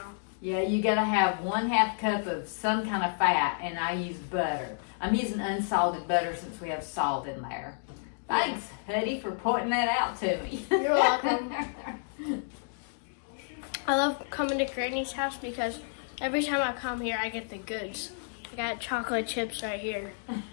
Yeah, you gotta have 1/2 cup of some kind of fat, and I use butter. I'm using unsalted butter since we have salt in there. Thanks, Huddy, for pointing that out to me. You're welcome. I love coming to Granny's house because every time I come here, I get the goods. I got chocolate chips right here.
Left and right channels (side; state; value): right; silent; digital silence